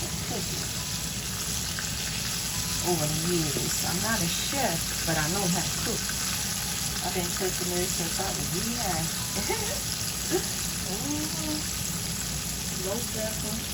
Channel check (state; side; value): identical; both; correlation 1.00